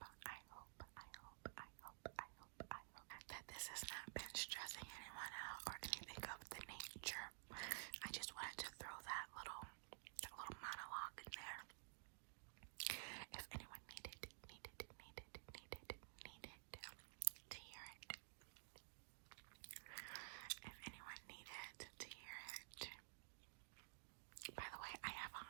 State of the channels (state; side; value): silent; left; digital silence